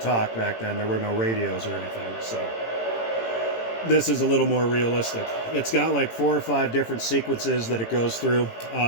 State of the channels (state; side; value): late; right; 18 ms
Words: back then. There were no radios or anything. So this is a little more realistic. It's got like 4 or 5 different sequences that it goes through.